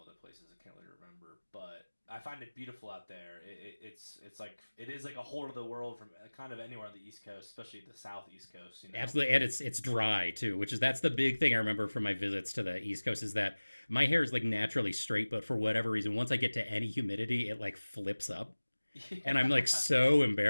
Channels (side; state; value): both; inverted; correlation -1.00